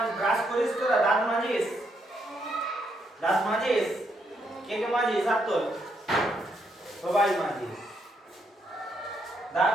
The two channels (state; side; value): normal; both; correlation 0.76